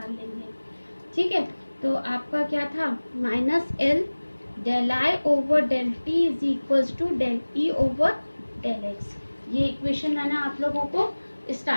लेंगे। ठीक है, तो आपका क्या था, minus L del I over del t is equals to del E over del x. ये इक्वेशन मैंने आप लोगों को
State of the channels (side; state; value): both; inverted; correlation -1.00